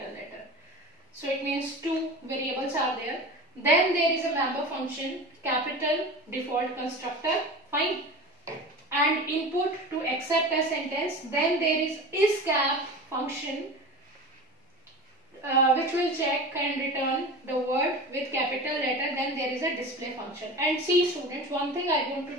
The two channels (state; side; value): normal; both; correlation 0.32